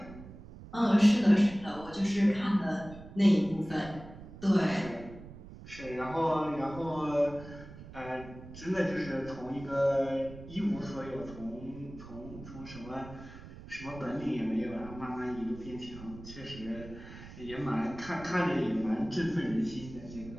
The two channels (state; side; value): noise; right; rumble, 15 dB below the sound